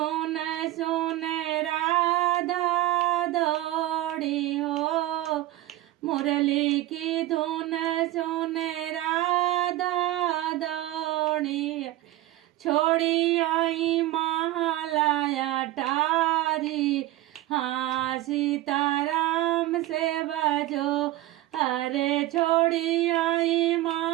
सुन राधा दौड़ी हो। मुरली की धुन सुन राधा दौड़ी, छोड़ी आई महालया टारी। हाँ सीताराम से बजो, अरे छोड़ी आई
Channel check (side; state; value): left; quieter; 15.8 dB